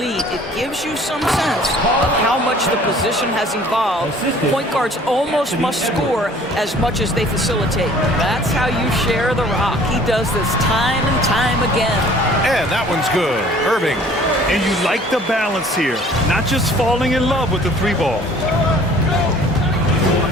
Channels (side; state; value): both; normal; correlation 0.52